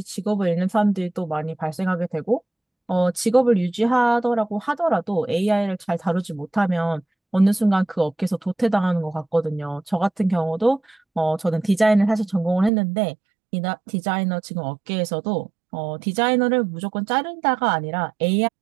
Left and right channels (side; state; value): left; drops out; at 12.7 s